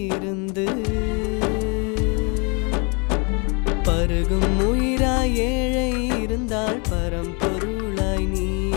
இருந்து பருகும் உயிராய் ஏழை இருந்தால் பரம்பொருளாய் நீ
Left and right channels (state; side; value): quieter; right; 33.0 dB